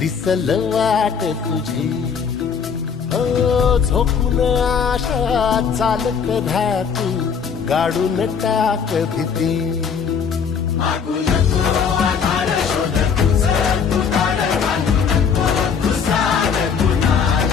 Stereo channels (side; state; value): right; quieter; 6.6 dB